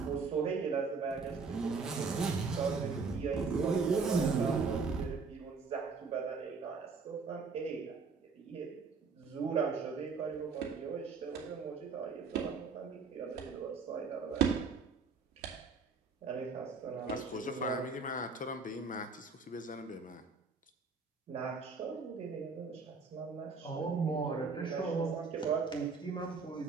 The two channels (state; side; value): quieter; left; 4.7 dB